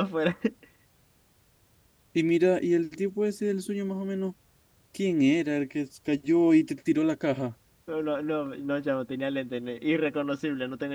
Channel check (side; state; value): both; identical; correlation 1.00